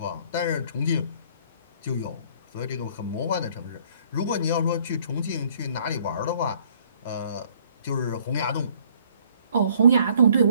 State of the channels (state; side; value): inverted; both; correlation -0.60